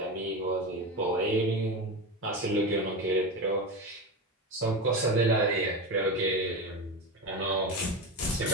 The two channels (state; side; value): normal; both; correlation 0.20